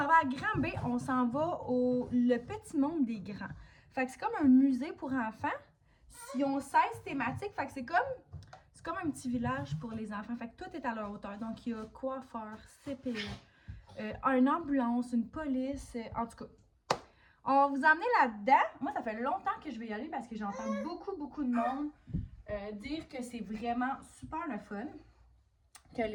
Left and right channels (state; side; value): identical; both; correlation 1.00